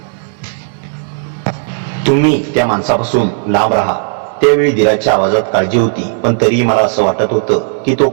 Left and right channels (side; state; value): left; silent; digital silence